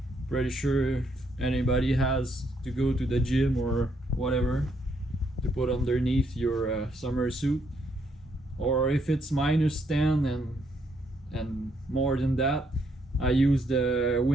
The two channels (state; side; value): normal; both; correlation 0.73